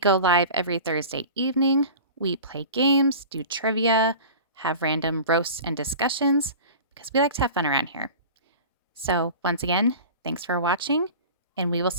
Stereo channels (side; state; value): both; inverted; correlation -0.37